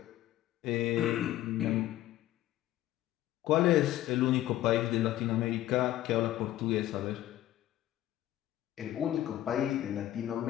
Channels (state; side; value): quieter; right; 13.9 dB